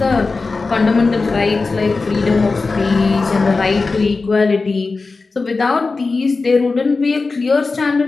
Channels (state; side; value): quieter; right; 3.9 dB